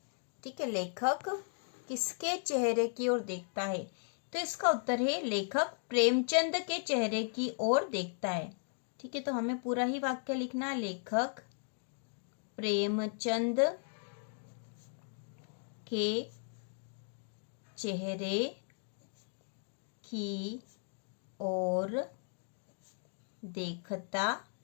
ठीक है, लेखक किसके चेहरे की ओर देखता है। तो इसका उत्तर है, लेखक प्रेमचंद के चेहरे की ओर देखता है। ठीक है, तो हमें पूरा ही वाक्य लिखना है, लेखक प्रेमचंद के चेहरे की ओर देखता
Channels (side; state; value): right; silent; 54 dB below the other